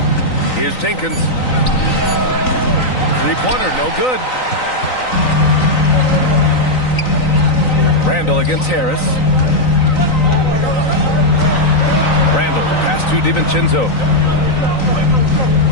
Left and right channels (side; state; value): right; late; 3.9 ms